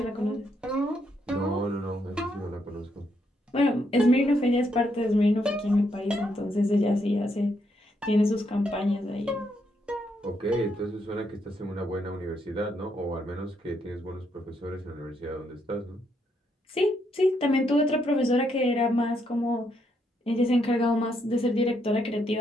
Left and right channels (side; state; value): both; normal; correlation 0.76